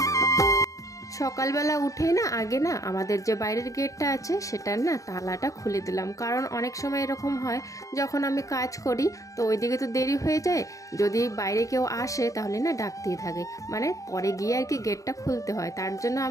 সকালবেলা উঠে আগে আমাদের যে বাইরের গেটটা আছে সেটার তালাটা খুলে দিলাম, কারণ অনেক সময় এরকম হয় যখন আমি কাজ করি তো ওইদিকে তো দেরি হয়ে যায়, যদি বাইরে কেউ আসে তাহলে ডাকতেই থাকে, মানে পরে গিয়ে আর কি গেটটা খুলতে হয়। তার জন্য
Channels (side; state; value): right; late; 0.16 ms